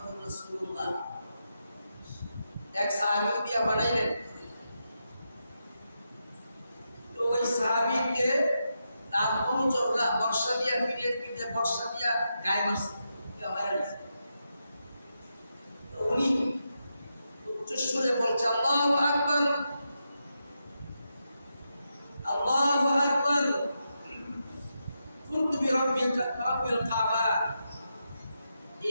রাসূলুল্লাহ। এক সাহাবী দিয়া বানাইলেন। তো ওই সাহাবীকে তার অনুচররা বর্ষা দিয়া পিঠের পিঠে বর্ষা দিয়া গায়ে মারছে, তো উনি উচ্চস্বরে বলছে আল্লাহু আকবার, আল্লাহু আকবার, কুনতু বিরাব্বিকা রাব্বিল কাবা।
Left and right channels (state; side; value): inverted; both; correlation -0.86